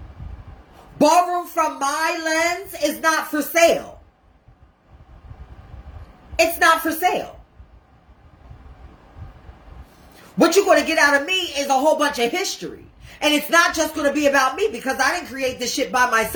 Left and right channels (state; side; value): identical; both; correlation 1.00